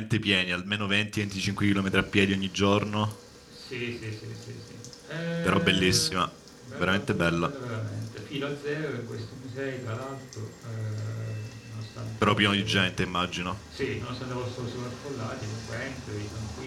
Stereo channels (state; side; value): identical; both; correlation 1.00